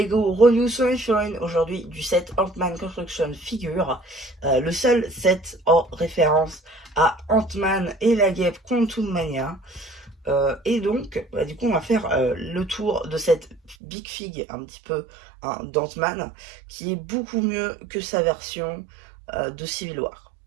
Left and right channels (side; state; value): left; drops out; at 13.8 s